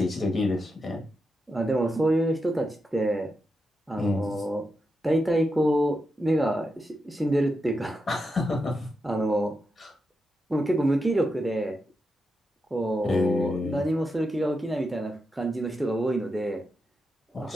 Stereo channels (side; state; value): both; normal; correlation 0.86